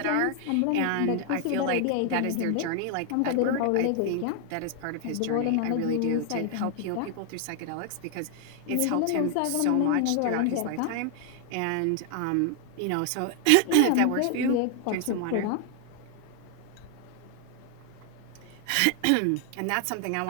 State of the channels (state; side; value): different; both; correlation 0.00